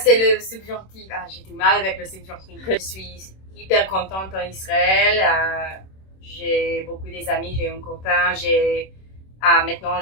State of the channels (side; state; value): right; late; 26 ms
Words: le subjonctif. J'ai du mal avec le subjonctif. Je suis hyper contente en Israël. J'ai beaucoup des amis, j'ai un copain. Maintenant